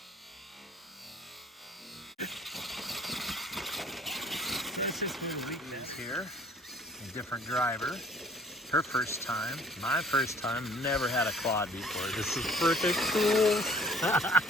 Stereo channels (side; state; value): both; normal; correlation 0.53